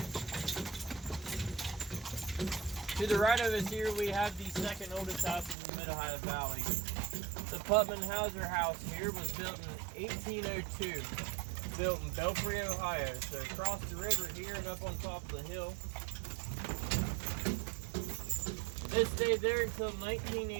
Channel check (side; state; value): left; drops out; at 5.6 s